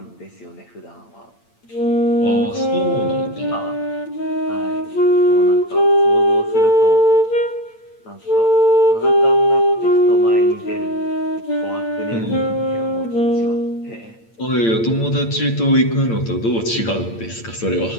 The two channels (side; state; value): right; late; 8.8 ms